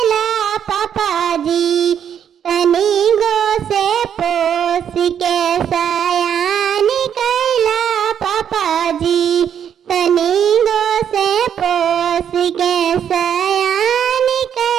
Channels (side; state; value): left; quieter; 8.7 dB